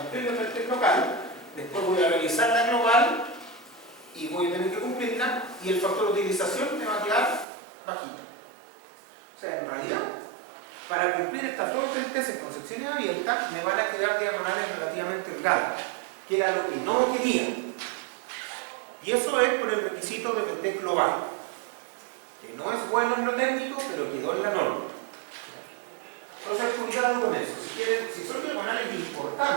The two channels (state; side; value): drops out; left; at 7.5 s